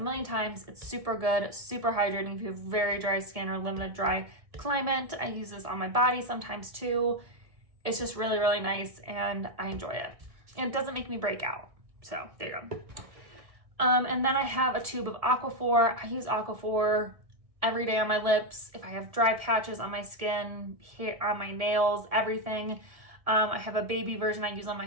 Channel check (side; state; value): left; late; 1.7 ms